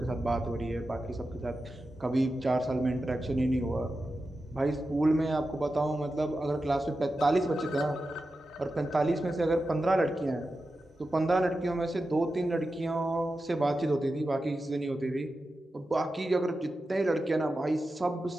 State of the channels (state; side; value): normal; both; correlation 0.91